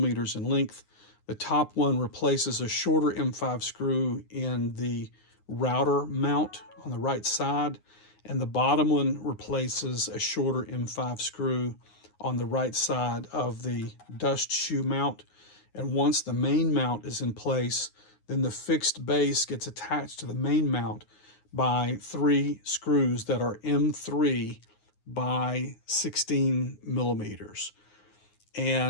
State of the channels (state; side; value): late; right; 9.6 ms